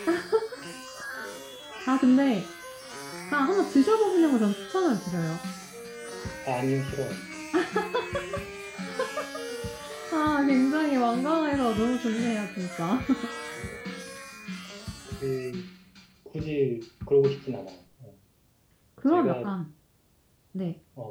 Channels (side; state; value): both; identical; correlation 1.00